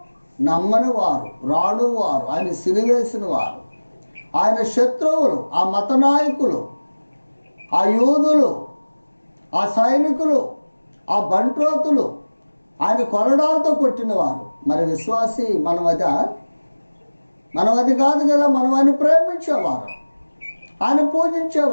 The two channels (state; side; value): inverted; both; correlation -1.00